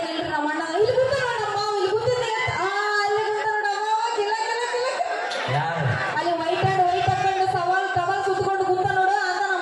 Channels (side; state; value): both; identical; correlation 1.00